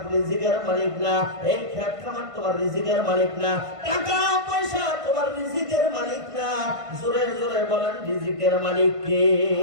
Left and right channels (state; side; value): late; left; 1.5 ms